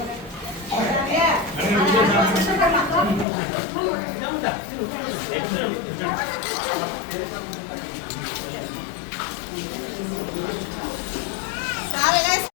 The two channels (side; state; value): right; drops out; at 3.2 s